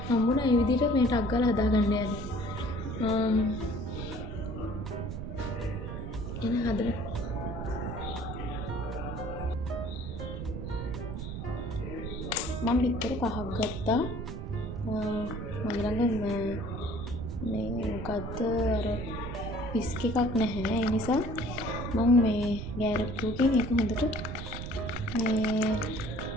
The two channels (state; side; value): noise; right; rumble, 6 dB below the sound